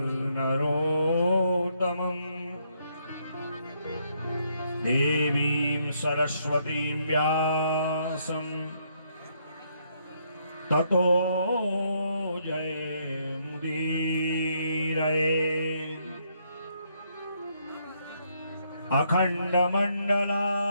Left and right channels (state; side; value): inverted; both; correlation -0.73